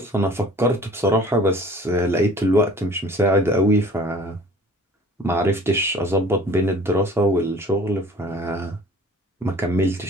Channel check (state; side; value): normal; both; correlation 0.48